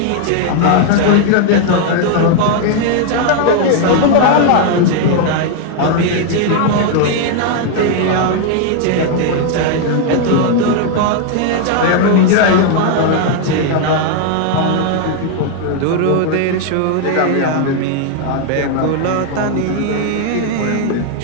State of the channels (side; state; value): both; different; correlation 0.00